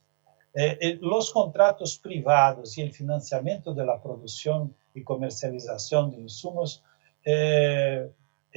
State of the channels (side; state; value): left; silent; digital silence